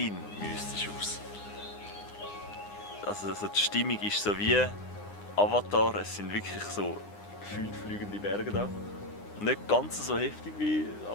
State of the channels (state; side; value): late; right; 9.8 ms